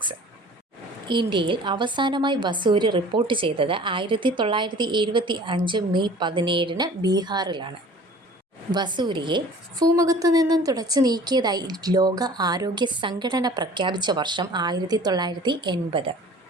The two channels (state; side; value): normal; both; correlation 0.47